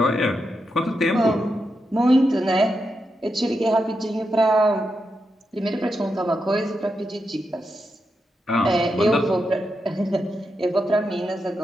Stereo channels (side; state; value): both; normal; correlation 0.86